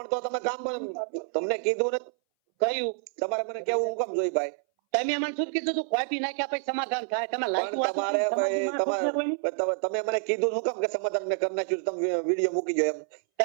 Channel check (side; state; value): left; silent; 59 dB below the other